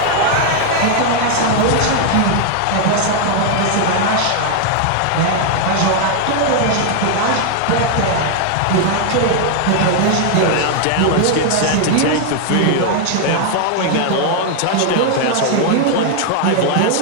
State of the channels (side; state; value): both; different; correlation 0.00